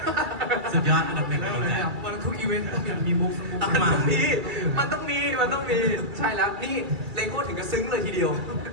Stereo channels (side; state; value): left; late; 2.3 ms